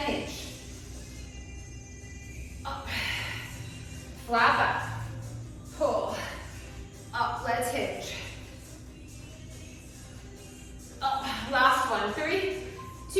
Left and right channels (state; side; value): identical; both; correlation 1.00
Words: hinge. Up. Flat back. Pull. Up, let's hinge. Up, last one. 3,